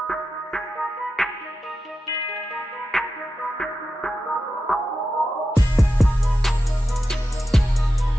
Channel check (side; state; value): both; normal; correlation 0.91